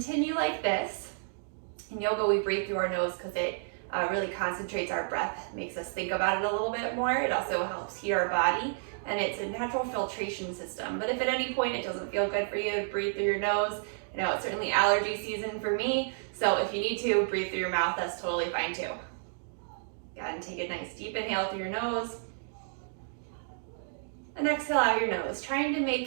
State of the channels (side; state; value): left; silent; digital silence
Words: like this. In yoga, we breathe through our nose because it really concentrates our breath, makes us think about it a little bit more. It also helps heat our body, and it's a natural filtration system. But if at any point it doesn't feel good for you to breathe through your nose, I know it's certainly allergy season for me, so if you need to breathe through your mouth, that's totally fine too. Go ahead and take a nice deep inhale through your nose, and exhale out your nose, trying to